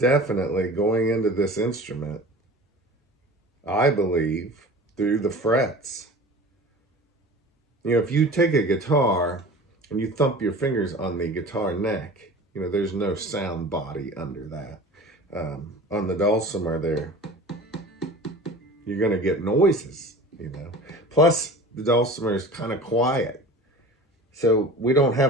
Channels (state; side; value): normal; both; correlation 0.39